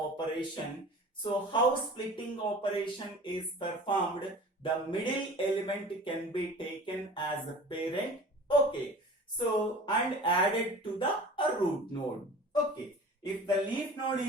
So how splitting operation is performed? The middle element can be taken as a parent. Okay. So and added to the root node. Okay. If the leaf node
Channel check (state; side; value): normal; both; correlation 0.41